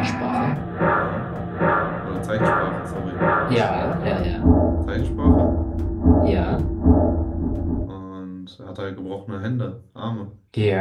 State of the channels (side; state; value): both; identical; correlation 1.00